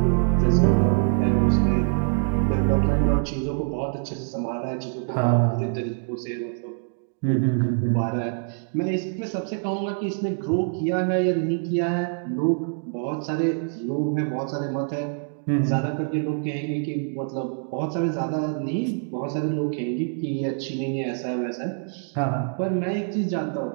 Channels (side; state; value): left; silent; 62 dB below the other